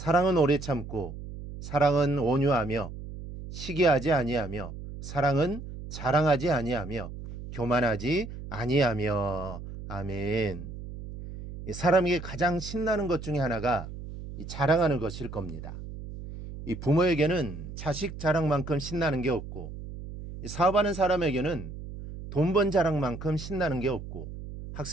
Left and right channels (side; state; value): right; noise; hum, 11 dB below the sound